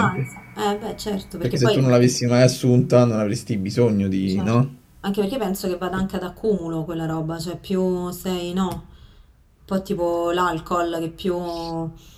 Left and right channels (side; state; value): both; identical; correlation 1.00